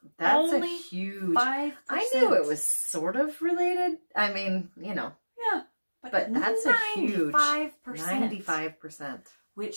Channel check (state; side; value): inverted; both; correlation -1.00